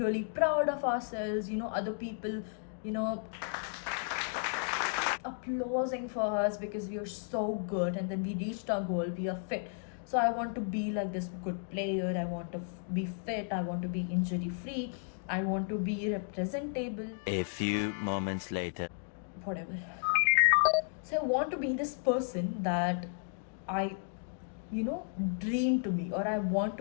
proud of ourselves, other people, applauding for us because we are so good, and then we reached our goal, we are fit. So I want to be like this good player, I want to be fit, I want to be injury free, I want to be representable. A few moments later. Whatever. So I want to be this person that I dream to be, or I want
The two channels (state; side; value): silent; right; digital silence